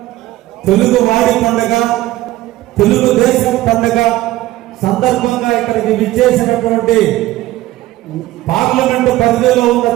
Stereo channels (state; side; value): quieter; left; 16.4 dB